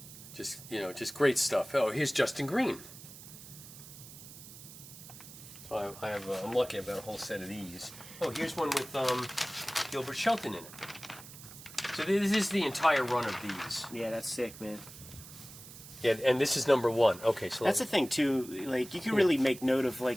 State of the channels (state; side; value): noise; right; hiss, 16 dB below the sound